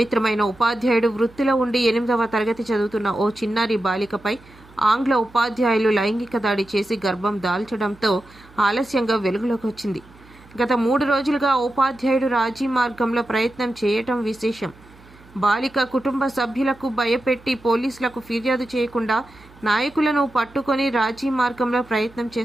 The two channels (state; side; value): noise; right; hum, 25 dB below the sound